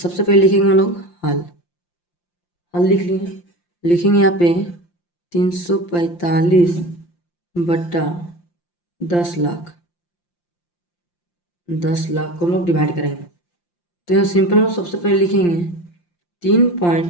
पहले लिखेंगे हम लोग हल लिख लिए, लिखेंगे यहाँ पे 345 बट्टा 10 लाख को हम लोग डिवाइड करेंगे। तो यहाँ सिंपल में सबसे पहले लिखेंगे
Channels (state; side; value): late; right; 5.8 ms